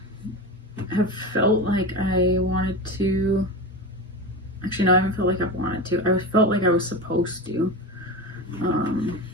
have felt like I wanted to, actually no, I haven't felt like I've wanted to, I felt like I was supposed to,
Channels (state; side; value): normal; both; correlation 0.24